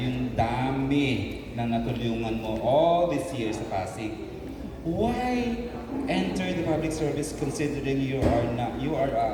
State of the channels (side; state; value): both; identical; correlation 1.00